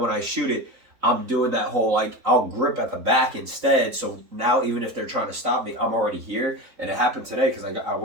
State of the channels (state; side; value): late; left; 4.0 ms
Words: I shoot it, I'm doing that whole like I'll grip at the back instead. So now even if they're trying to stop me, I'm already here. And it happened today because I